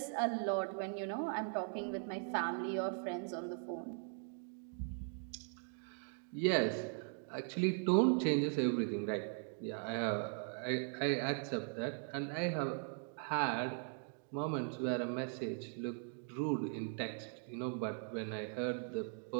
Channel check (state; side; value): silent; left; 51 dB below the other